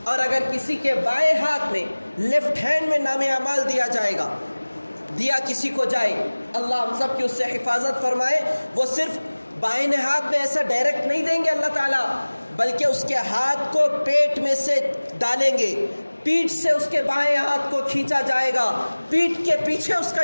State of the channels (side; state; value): both; inverted; correlation -1.00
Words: اور اگر کسی کے بائیں ہاتھ میں، لیفٹ ہینڈ میں نام اعمال دیا جائے گا، دیا کسی کو جائے، اللہ ہم سب کی اس سے حفاظت فرمائے، وہ صرف بائیں ہاتھ میں ایسا ڈائریکٹ نہیں دیں گے اللہ تعالیٰ، بلکہ اس کے ہاتھ کو پیٹ میں سے ڈالیں گے، پیٹھ سے اس کے بائیں ہاتھ کو کھینچا جائے گا، پیٹھ کے پیچھے اس کا